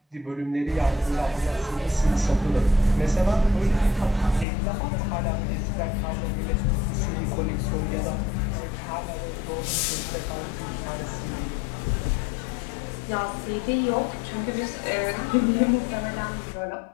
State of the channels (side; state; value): right; drops out; at 4.5 s